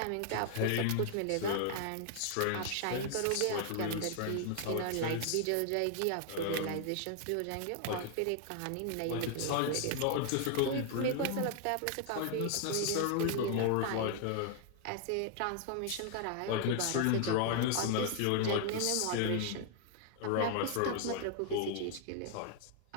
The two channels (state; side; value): different; both; correlation 0.00